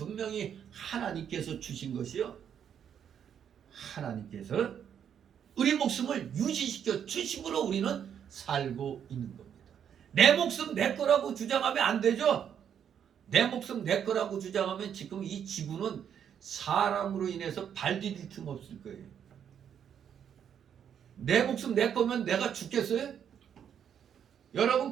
하나님께서 주신 것이요, 하나님께서 우리 목숨을 유지시켜 주심으로 우리는 살고 있는 겁니다. 내 목숨 내 거라고 주장하면 안 되죠. 내 목숨 내 거라고 주장하면 지금 이 지구는 사람으로 인해서 발 디딜 틈 없을 거예요. 내 목숨 내 거면 내가 죽겠어요? 여러분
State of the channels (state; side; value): quieter; left; 8.6 dB